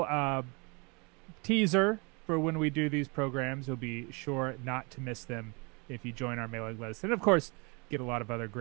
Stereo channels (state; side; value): quieter; left; 30.3 dB